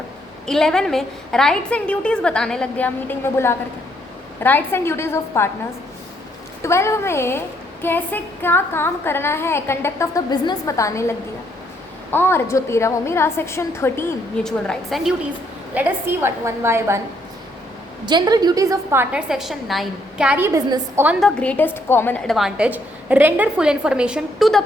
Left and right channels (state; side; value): normal; both; correlation 0.71